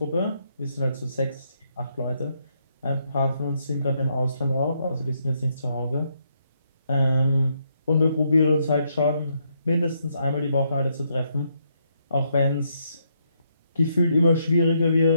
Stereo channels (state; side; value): inverted; both; correlation -0.76